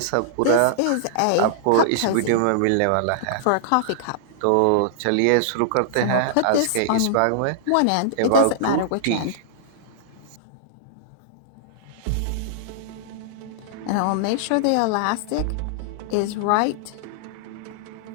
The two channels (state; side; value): different; both; correlation -0.01